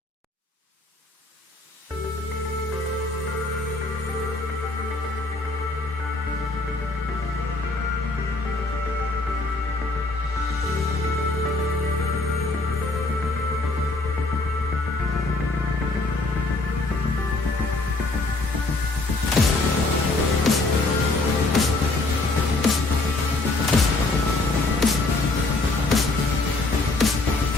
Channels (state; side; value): quieter; right; 3.1 dB